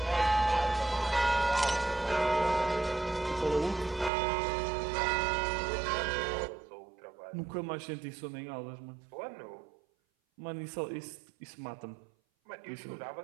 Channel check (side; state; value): left; drops out; at 4.1 s